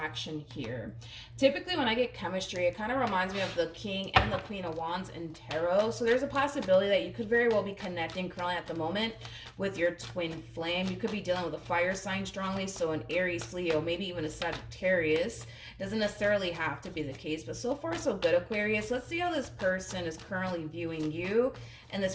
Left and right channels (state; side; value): identical; both; correlation 1.00